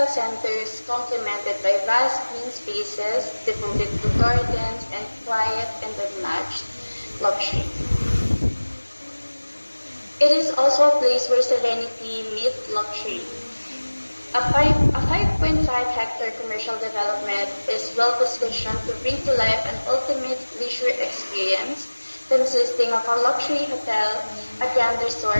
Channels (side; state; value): both; inverted; correlation -1.00